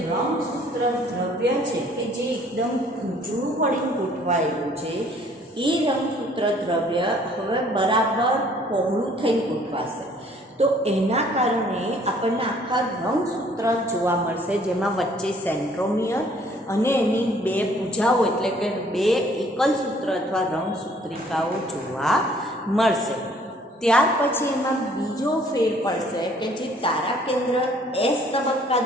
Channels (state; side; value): normal; both; correlation 0.59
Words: રંગસૂત્ર દ્રવ્ય છે કે જે એકદમ ગૂંચળું પડીને ગોઠવાયેલું છે, એ રંગસૂત્ર દ્રવ્ય હવે બરાબર પહોળું થઈને ગોઠવાશે. તો એના કારણે આપણને આખા રંગસૂત્ર જોવા મળશે, જેમાં વચ્ચે સેન્ટ્રોમિયર અને એની બે ભુજાઓ એટલે કે બે એકલ સૂત્ર અથવા રંગસૂત્રિકાઓ જોવા મળશે. ત્યાર પછી એમાં બીજો ફેર પડશે કે જે તારા કેન્દ્ર એસ તબક્કા